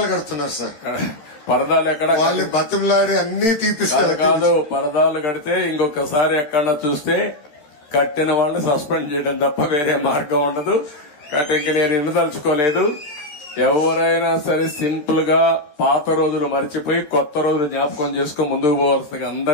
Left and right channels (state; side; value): late; right; 13 ms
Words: కడుతున్నారు సార్. పరదాలు ఎక్కడ? వాళ్ళు బతిమలాడి అన్ని తీపిస్తారు. కాదు, పరదాలు కడితే ఇంకొకసారి ఎక్కడ చూస్తే కట్టిన వాళ్ళని సస్పెండ్ చేయడం తప్ప వేరే మార్గం ఉండదు. కాబట్టి నేను ఎన్నుదలుచుకోలేదు. ఎవరైనా సరే సింపుల్ గా పాత రోజులు మర్చిపోయి కొత్త రోజులు జ్ఞాపకం చేసుకుని ముందుకు పోవాల్సిందిగా